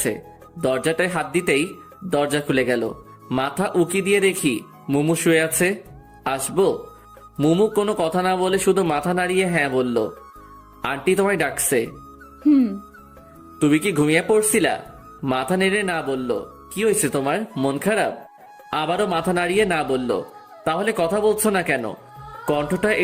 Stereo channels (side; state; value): both; identical; correlation 1.00